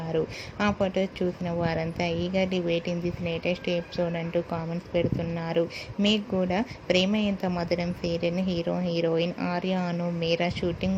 ఆ ఫొటోస్ చూసిన వారంతా eagerly waiting this latest episode అంటూ కామెంట్స్ పెడుతున్నారు. మీకు కూడా ప్రేమ ఎంత మధురం సీరియల్ హీరోయిన్ ఆర్య అను మీరా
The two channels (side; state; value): both; identical; correlation 1.00